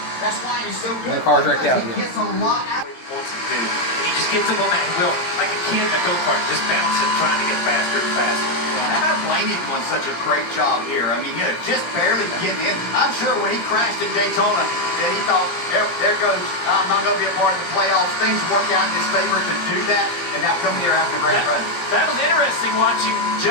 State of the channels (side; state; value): right; late; 17 ms